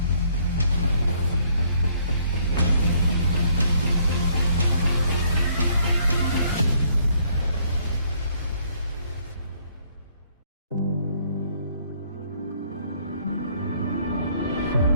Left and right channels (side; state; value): both; inverted; correlation -0.65